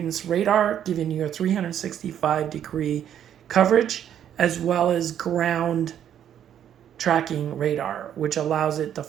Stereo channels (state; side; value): quieter; left; 9.9 dB